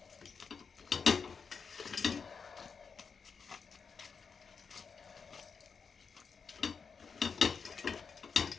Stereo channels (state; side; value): quieter; right; 5.7 dB